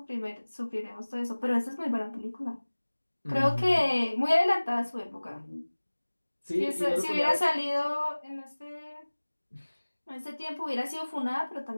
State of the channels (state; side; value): inverted; both; correlation -1.00